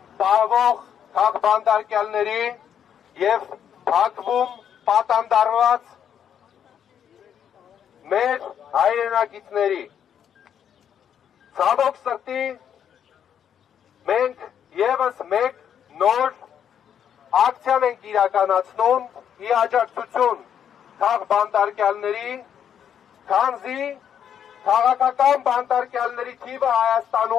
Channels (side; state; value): right; quieter; 8.8 dB